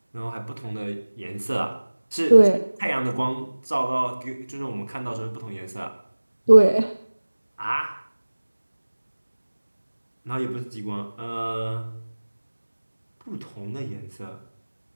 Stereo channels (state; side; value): inverted; both; correlation -1.00